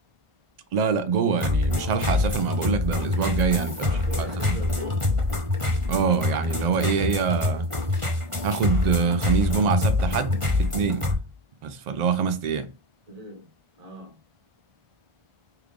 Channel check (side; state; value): left; late; 1.5 ms